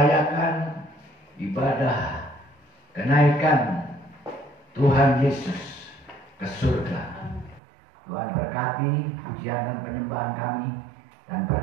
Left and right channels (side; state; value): left; drops out; at 7.6 s